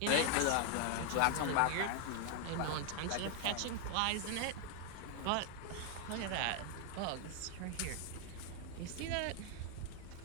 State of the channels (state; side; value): different; both; correlation 0.00